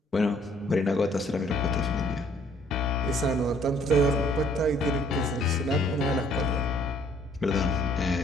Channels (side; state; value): both; normal; correlation 0.62